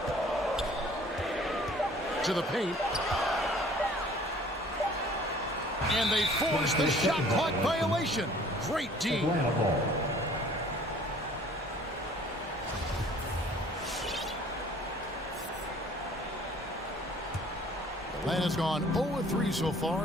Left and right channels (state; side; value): normal; both; correlation 0.53